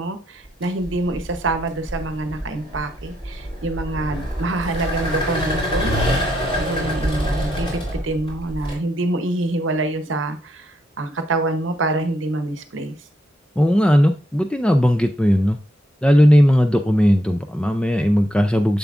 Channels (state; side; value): normal; both; correlation 0.80